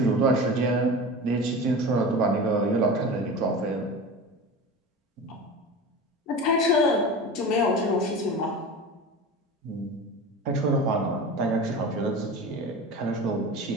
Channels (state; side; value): normal; both; correlation 0.31